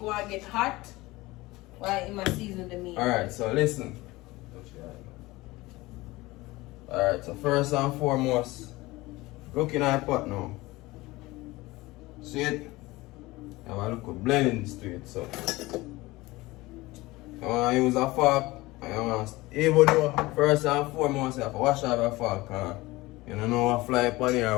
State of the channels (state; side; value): quieter; right; 20.3 dB